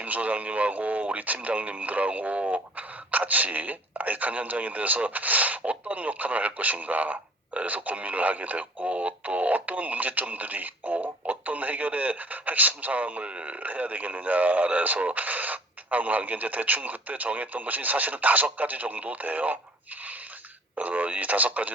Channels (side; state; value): both; normal; correlation 0.51